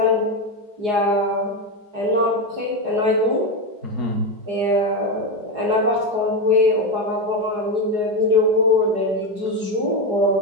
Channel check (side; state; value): left; late; 4.9 ms